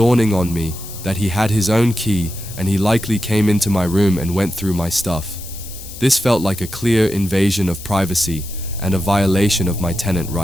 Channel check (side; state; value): left; noise; hiss, 14 dB below the sound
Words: on me that he had his own key and he likely came into my room and went through my stuff. This felt like a clear invasion of privacy and a violation of my tenant